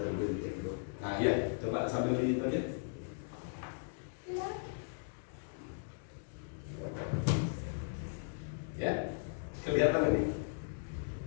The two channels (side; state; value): right; silent; digital silence